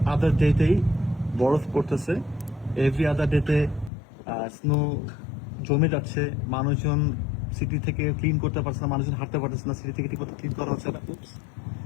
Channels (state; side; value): drops out; right; at 3.9 s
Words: আদার ডেতেই বরফ পড়তেছে, এভরি আদার ডেতে স্নো জমে যাচ্ছে। মানুষজন সিটি থেকে ক্লিন করতে পারছে না, মানুষজন হাঁটতে পারতেছে না, সিটি থেকে ঠিক মতো ক্লিন করা হচ্ছে না।